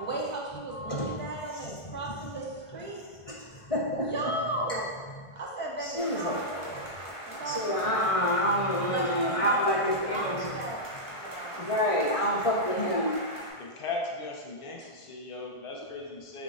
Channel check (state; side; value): late; right; 1.5 ms